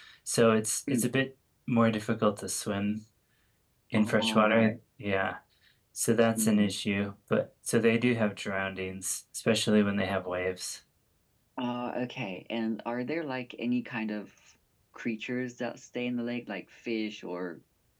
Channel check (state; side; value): identical; both; correlation 1.00